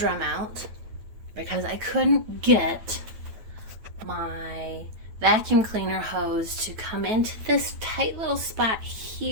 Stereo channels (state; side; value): late; left; 9.2 ms